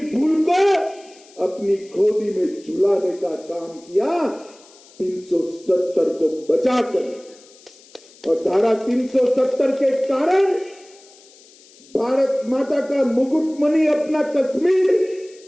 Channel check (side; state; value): left; noise; hiss, 25 dB below the sound